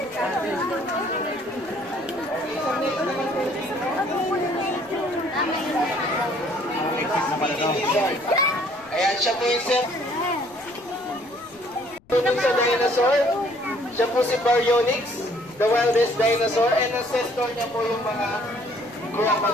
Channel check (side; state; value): left; noise; rumble, 29 dB below the sound